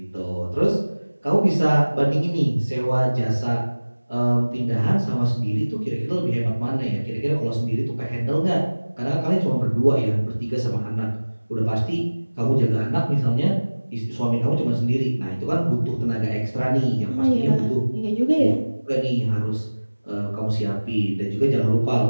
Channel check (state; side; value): inverted; both; correlation -1.00